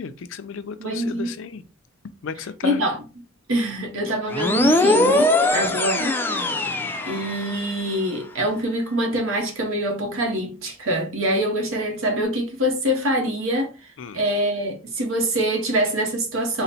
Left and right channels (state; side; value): normal; both; correlation 0.28